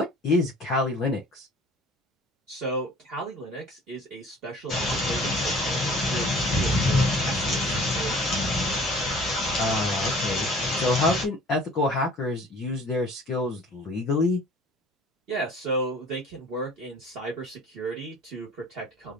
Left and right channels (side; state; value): both; normal; correlation 0.49